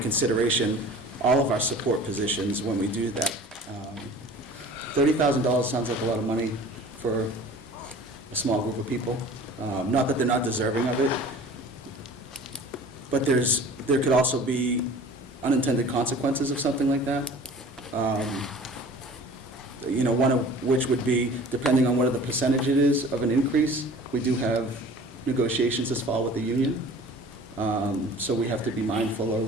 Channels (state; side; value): normal; both; correlation 0.44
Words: all of our support positions when we do that. $30,000 sounds like a lot of money for a small group of people. Not that they're not deserving of it, but there could also be unintended consequences of something like that. One of which would be, depending on what the percentage it is of an increase, we do have negotiations this fall with the union. So we have to be mindful